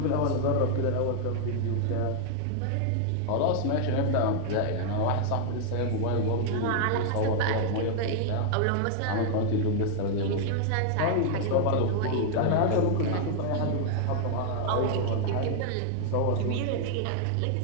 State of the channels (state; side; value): different; both; correlation 0.00